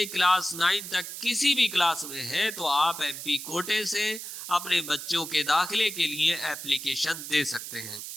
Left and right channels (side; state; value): right; noise; hiss, 9 dB below the sound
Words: क्लास 9 तक किसी भी क्लास में है तो आप एमपी कोटे से अपने बच्चों के दाखिले के लिए एप्लीकेशन दे सकते हैं।